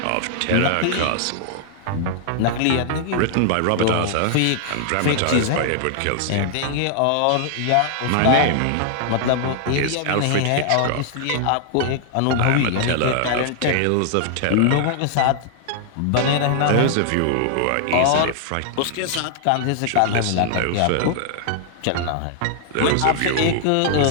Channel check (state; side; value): different; both; correlation -0.01